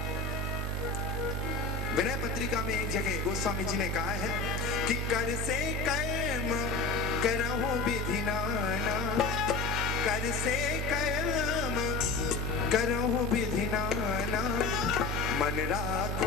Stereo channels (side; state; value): right; quieter; 3.4 dB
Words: विनय पत्रिका में एक जगह गोस्वामी जी ने कहा है कि कर से कर्म करहु विधि नाना, कर से कर्म करहु विधि नाना, मन